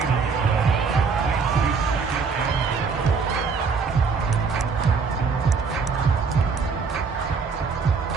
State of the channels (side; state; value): left; quieter; 5.2 dB